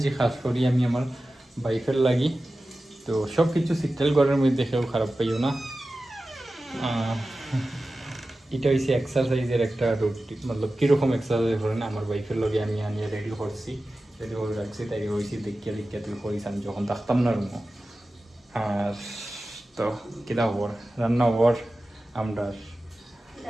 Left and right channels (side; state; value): both; normal; correlation 0.95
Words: খাস করি আমি আমার ওয়াইফের লাগি তো সব কিছু সিটেল ঘরের মধ্যে কেউ খারাপ পাইও না এটা হচ্ছে এক্সারসাইজের একটা রুটিন মতলব কীরকম এক্সারসাইজ করেন আমার ওয়াইফের লগে আমি আনিয়ে রেডি করছি রেডি করে রাখছি তাই হয়েছি দেখিয়া তুই করিস আমি যখন থাকতাম না রুম আর তো কিতা হবর রান্না হবর আমরা